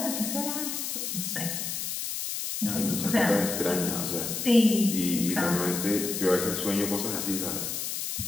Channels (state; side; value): noise; left; hiss, 3 dB below the sound